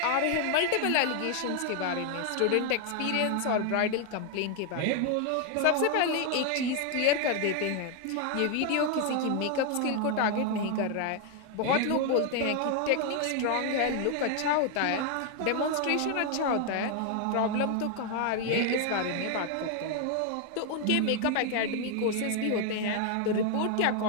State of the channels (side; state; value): both; different; correlation 0.01